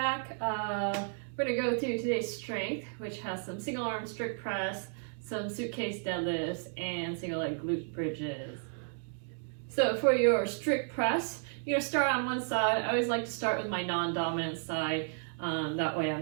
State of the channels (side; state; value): left; silent; 56 dB below the other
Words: We're going to go through today's strength, which has some single arm strict press, some suitcase deadlifts, and single leg glute bridges. So for your strict press, you're going to start on one side. I always like to start with my non-dominant side. That way I'm